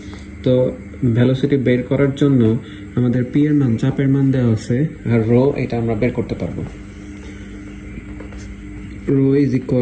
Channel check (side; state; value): both; identical; correlation 1.00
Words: তো ভেলোসিটি বের করার জন্য আমাদের পি এর মান, চাপের মান দেওয়া আছে, আর রো এটা আমরা বের করতে পারবো। Rho is